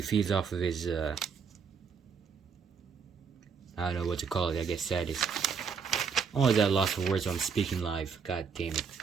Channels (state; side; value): quieter; left; 6.1 dB